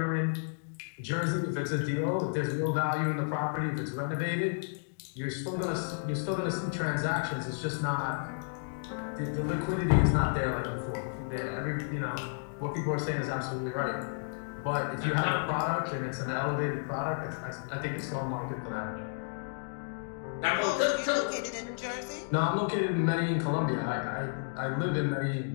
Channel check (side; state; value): right; silent; digital silence